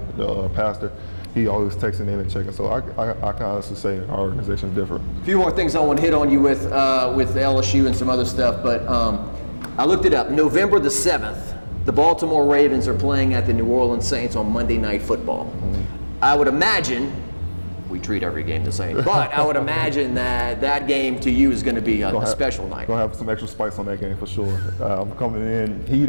the pastor, he always texting in and checking. So I can honestly say our organization is different. A few more things I want to hit on you with LSU and some other stuff, but I looked it up. November the 7th, the Baltimore Ravens are playing at the New Orleans Saints on Monday Night Football. Mm-hmm. I would imagine, we treat every game the same, but I would imagine that game to you is going to be a special night. Gonna have some extra spice on that game for sure. I'm coming in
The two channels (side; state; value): both; inverted; correlation -1.00